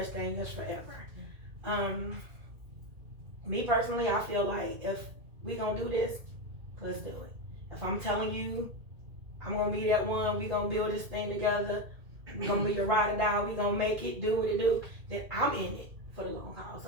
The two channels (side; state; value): left; late; 2.2 ms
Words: thing as forever. Me personally, I feel like if we gonna do this, let's do it. If I'm telling you I'm gonna be that one, we gonna build this thing together, we gonna be your ride or die, we gonna make it, do what it do, then I'm in it for the long haul.